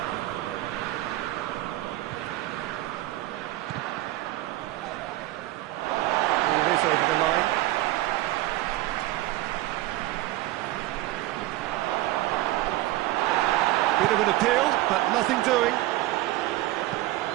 Here it is over the line. Bit of an appeal, but nothing doing.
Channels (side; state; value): left; quieter; 17.1 dB